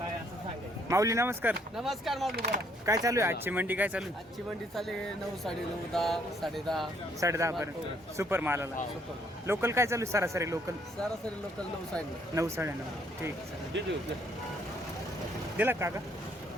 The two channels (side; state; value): both; normal; correlation 0.67